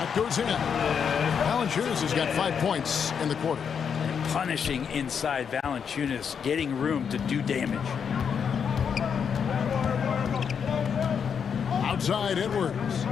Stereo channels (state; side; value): quieter; right; 7.0 dB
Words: goes in. Valanciunas has got 5 points in the quarter. Punishing inside Valanciunas, getting room to do damage. Outside Edwards.